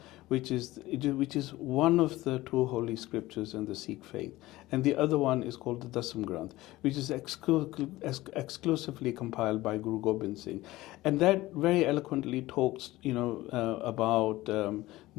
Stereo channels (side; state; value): right; quieter; 17.8 dB